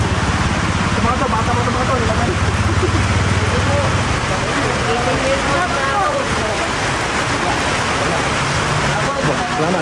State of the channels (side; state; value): both; identical; correlation 1.00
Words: to, bata mo ito mga to. Salamat.